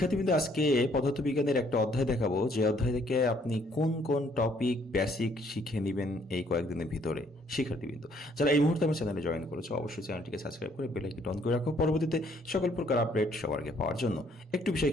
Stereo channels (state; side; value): normal; both; correlation 0.65